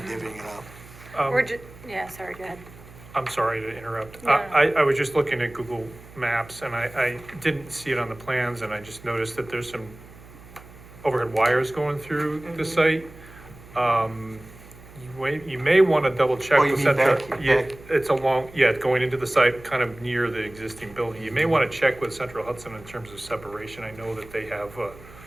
divvying it up. We're yeah, sorry, go ahead. I'm sorry to interrupt. No. I was just looking at Google Maps and I didn't see it on the plans and I just noticed that there's some overhead wires going through the site. You may wanna double check Oh, you with mean Central. back- Yeah, back- it's going into the site, kind of near the existing building. You may wanna check with Central Hudson in terms of separation. I know that they have a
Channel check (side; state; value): right; noise; hum, 20 dB below the sound